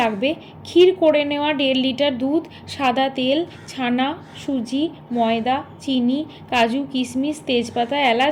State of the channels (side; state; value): both; identical; correlation 1.00